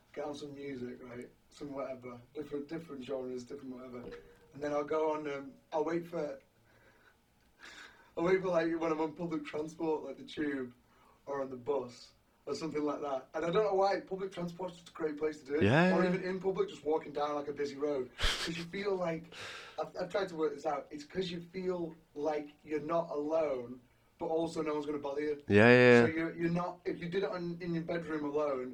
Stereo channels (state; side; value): identical; both; correlation 1.00